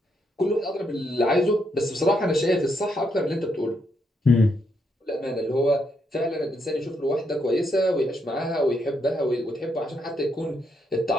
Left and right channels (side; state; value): both; normal; correlation 0.78